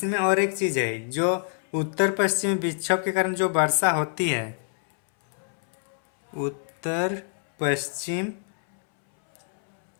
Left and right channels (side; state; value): right; silent; 61 dB below the other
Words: और एक चीज़ है, जो उत्तर पश्चिमी विक्षोभ के कारण जो वर्षा होती है, उत्तर पश्चिम